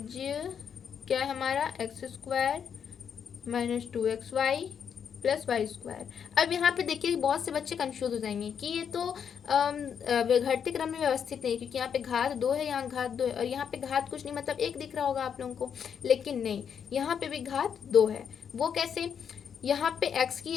क्या है हमारा, x square minus 2xy plus y square. अब यहाँ पे देखिए बहुत से बच्चे कंफ्यूज हो जाएंगे कि ये तो घटते क्रम में व्यवस्थित नहीं, क्योंकि यहाँ पे घात 2 है, यहाँ घात 2 है और यहाँ पे घात कुछ नहीं, मतलब 1 दिख रहा होगा आप लोगों को। लेकिन नहीं, यहाँ पे भी घात 2 है। वो कैसे? यहाँ पे x की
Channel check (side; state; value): right; quieter; 7.6 dB